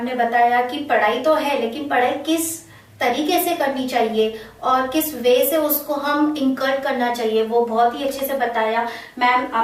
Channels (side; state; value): both; identical; correlation 1.00